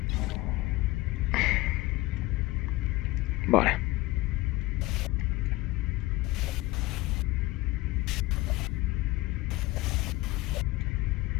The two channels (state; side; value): quieter; right; 19.6 dB